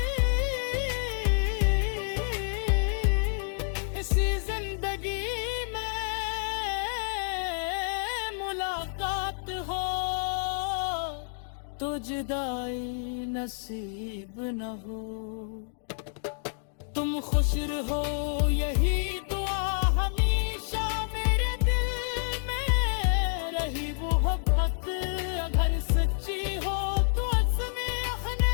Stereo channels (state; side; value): silent; right; digital silence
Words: इसी जिंदगी में मुलाकात हो तो जुदाई नसीब न हो। तुम खुश रहो यही दुआ हमेशा मेरे दिल में रही वो मोहब्बत अगर सच्ची हो तो असमें अखने